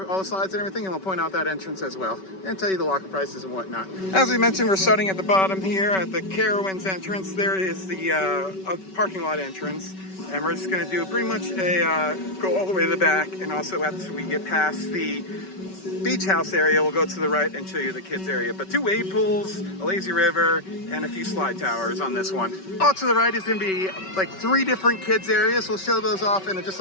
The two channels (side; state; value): right; late; 5.3 ms